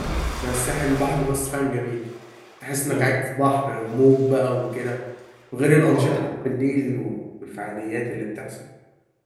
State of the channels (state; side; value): identical; both; correlation 1.00